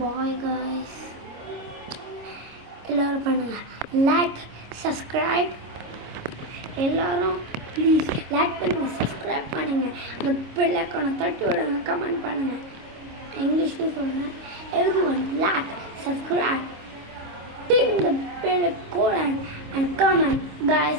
guys. எல்லாரும் பண்ணுங்க, லைக் சப்ஸ்கிரைப். எல்லாரும் ப்ளீஸ் லைக் பண்ணுங்க, சப்ஸ்கிரைப் பண்ணுங்க, அந்த பெல் ஐகானை தட்டி விடுங்க, கமெண்ட் பண்ணுங்க. இங்கிலீஷ்ல சொல்றேன். everyone like, subscribe, ding the bell icon and comment guys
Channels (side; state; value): left; late; 26 ms